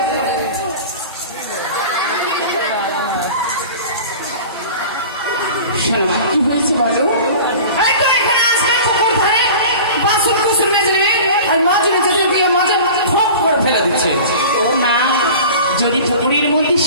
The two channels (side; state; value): both; inverted; correlation -0.38